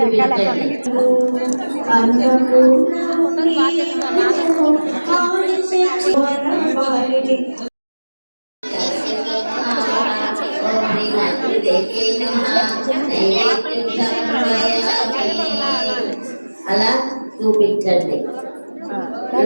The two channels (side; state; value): both; inverted; correlation -1.00